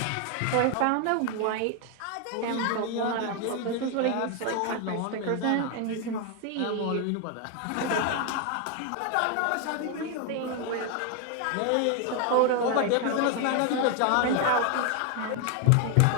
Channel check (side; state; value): both; different; correlation 0.01